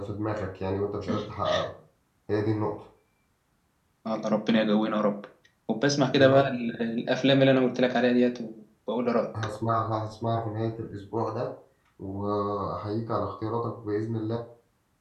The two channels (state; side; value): identical; both; correlation 1.00